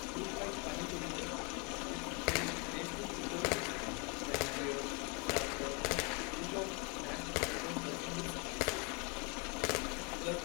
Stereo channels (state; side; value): quieter; right; 32.8 dB